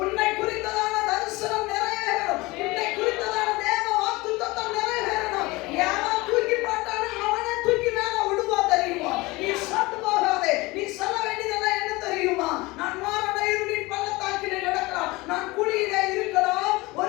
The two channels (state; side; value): quieter; right; 22.1 dB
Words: உன்னை குறித்ததான தரிசனம் நிறைவேறணும். உன்னை குறித்ததான தேவ வாக்குத்தத்தம் நிறைவேறணும். யாரும் தூக்கி போட்டானோ அவனே தூக்கி மேல விடுவா தெரியுமா? நீ சத்து போகாதே. நீ சொல்ல வேண்டியதெல்லாம் என்ன தெரியுமா? நான் மரண இருளின் பள்ளத்தாக்கிலே நடக்கலாம், நான் குழியில இருக்கலாம்,